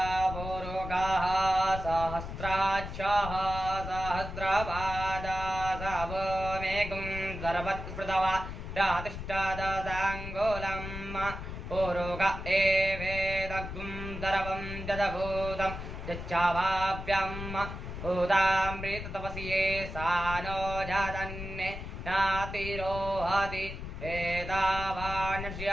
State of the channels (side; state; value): left; noise; rumble, 8 dB below the sound